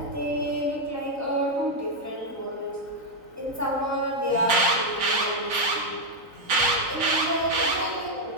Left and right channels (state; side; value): late; left; 3.9 ms